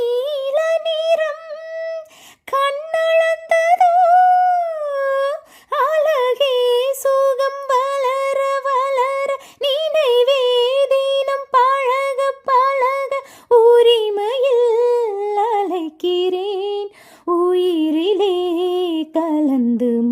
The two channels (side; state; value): both; identical; correlation 1.00